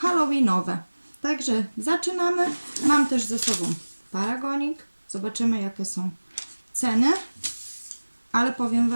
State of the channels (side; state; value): both; inverted; correlation -1.00